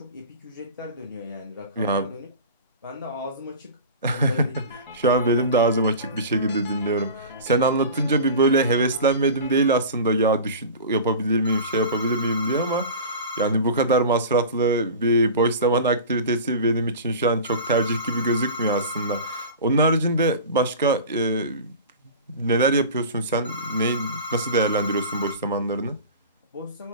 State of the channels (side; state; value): both; inverted; correlation -0.35